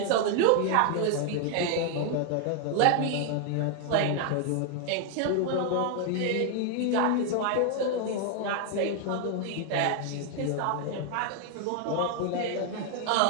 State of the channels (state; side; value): different; both; correlation 0.00